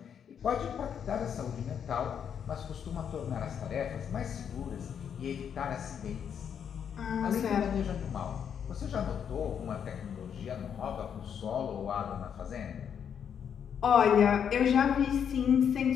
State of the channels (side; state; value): right; quieter; 8.0 dB